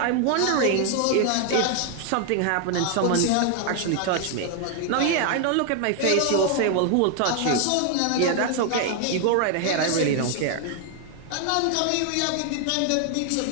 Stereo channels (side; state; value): both; different; correlation 0.00